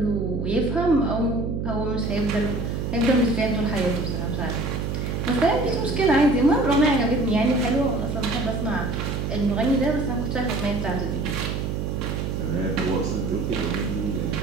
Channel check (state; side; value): noise; right; hum, 2 dB below the sound